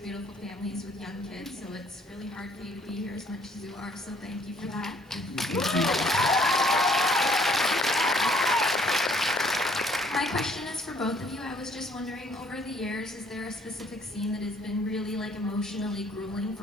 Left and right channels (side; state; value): both; normal; correlation 0.62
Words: beautiful families with young kids, so it's really hard for you to be here as much as you are, so thank you for that. My question is for both of you. I was just wondering, over the years, is there a specific scene that has been really like emotionally grueling